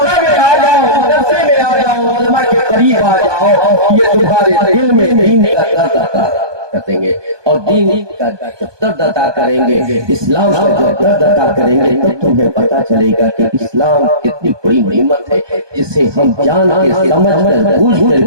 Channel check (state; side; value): late; left; 1.2 ms